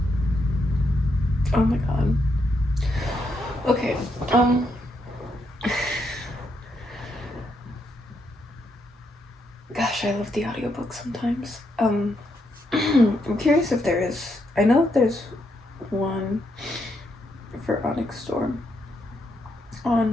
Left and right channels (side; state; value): both; normal; correlation 0.79